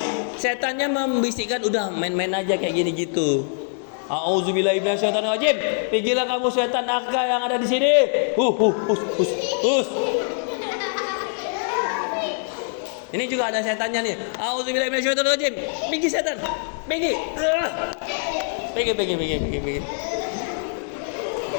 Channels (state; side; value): silent; right; 59 dB below the other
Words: setannya membisikkan udah main-main aja kayak gini gitu. Auzubillahi minasyaitonirrajim. Pergilah kamu setan nakal yang ada di sini. Hus. Ini juga ada setannya nih. Auzubillahi minasyaitonirrajim. Pergi setan. Pergi. Pergi.